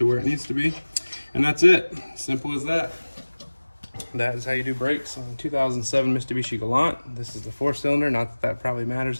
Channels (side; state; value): both; inverted; correlation -1.00